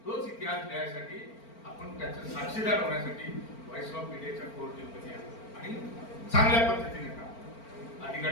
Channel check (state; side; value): late; right; 4.4 ms